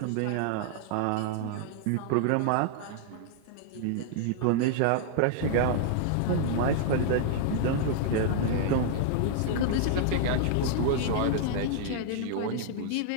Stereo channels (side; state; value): both; different; correlation -0.01